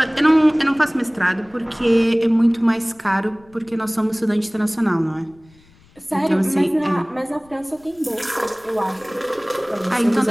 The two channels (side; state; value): left; noise; rumble, 29 dB below the sound